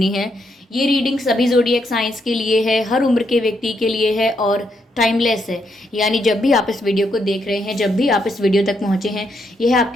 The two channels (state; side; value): normal; both; correlation 0.77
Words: है। ये रीडिंग सभी ज़ोडिएक साइंस के लिए है, हर उम्र के व्यक्ति के लिए है और टाइमलेस है। यानी जब भी आप इस वीडियो को देख रहे हैं, जब भी आप इस वीडियो तक पहुंचे हैं, यह